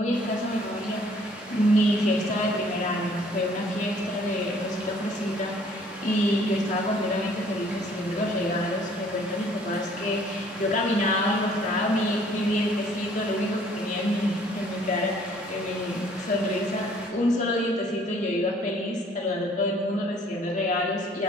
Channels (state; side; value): normal; both; correlation 0.58